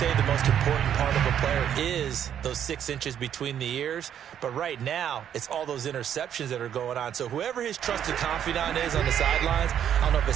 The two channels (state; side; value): quieter; left; 9.5 dB